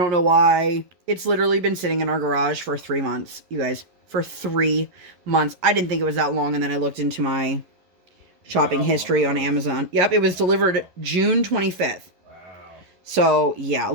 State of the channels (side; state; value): left; late; 11 ms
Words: know why. It's literally been sitting in our garage for 3 months, you guys. For 3 months. I didn't think it was that long. And then I looked into my shopping history on Amazon. Yep, it was delivered June 25th. Wow. So, yeah, a